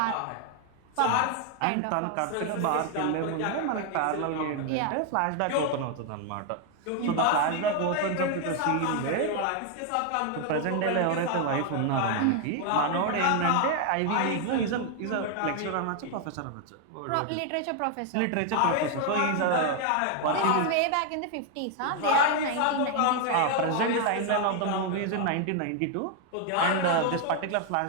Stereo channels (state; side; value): different; both; correlation 0.01